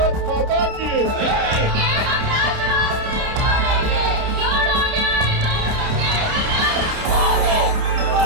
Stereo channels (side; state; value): left; late; 29 ms